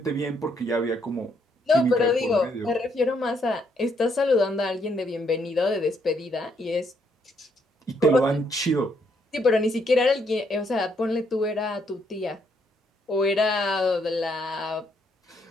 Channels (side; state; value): both; normal; correlation 0.73